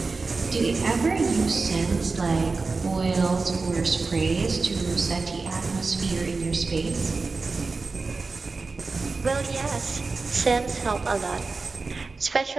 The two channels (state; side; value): quieter; left; 4.0 dB